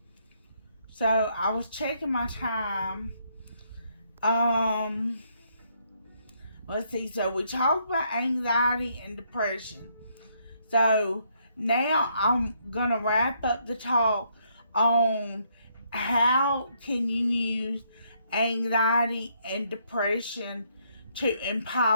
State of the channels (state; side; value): inverted; both; correlation -0.72